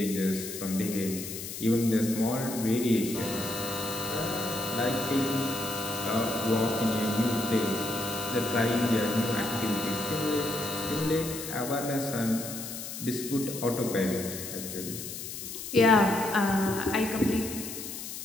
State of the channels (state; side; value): noise; left; hiss, 8 dB below the sound